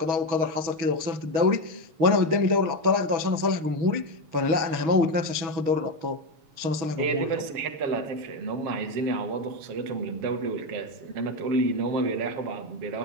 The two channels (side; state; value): left; late; 6.2 ms